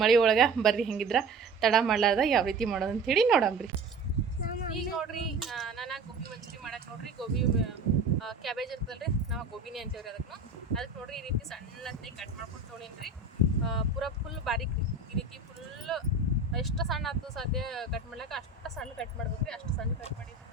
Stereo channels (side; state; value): left; quieter; 3.6 dB